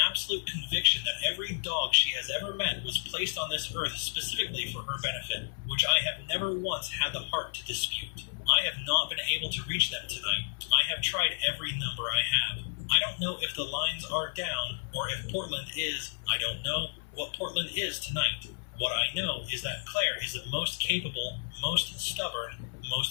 absolute conviction that every dog she has ever met was placed on this earth specifically for her benefit, which I have never once had the heart to dispute. I have not been able to reach them tonight. I have tried every number I have. I don't know if the lines are down, or if Portland is. I don't know what Portland is tonight. What I know is that Claire is the most capable, most stubborn,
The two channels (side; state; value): right; silent; 56 dB below the other